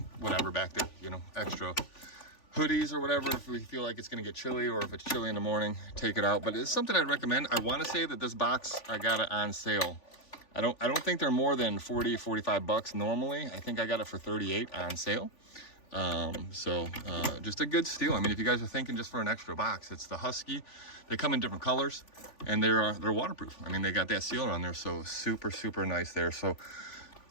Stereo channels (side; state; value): right; late; 3.4 ms